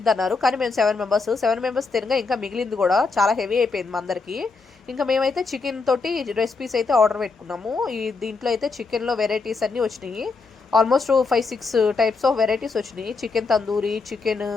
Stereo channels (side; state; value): right; quieter; 4.2 dB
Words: అన్నారు. కానీ మేము 7 మెంబర్స్ తినగా ఇంకా మిగిలింది కూడా చాలా హెవీ అయిపోయింది మా అందరికి. ఇంకా మేమైతే చికెన్ తోటి రెసిపీస్ అయితే ఆర్డర్ పెట్టుకున్నాము. దీంట్లో అయితే చికెన్లో వెరైటీస్ అన్నీ వచ్చినాయి. ఆల్మోస్ట్ 5-6 టైప్స్ ఆఫ్ వెరైటీస్ వచ్చినాయి. Chicken tandoori, chicken